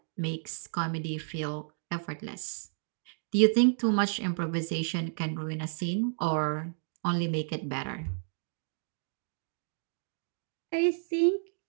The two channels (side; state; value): left; silent; digital silence